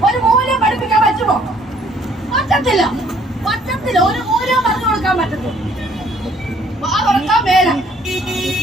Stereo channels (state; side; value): normal; both; correlation 0.62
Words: ഒരു മൂല്യം പഠിപ്പിക്കാൻ പറ്റുമോ? പറ്റത്തില്ല. ഒരു മൂല്യം പറഞ്ഞു കൊടുക്കാൻ പറ്റത്തില്ല. തുറക്കാൻ മേല.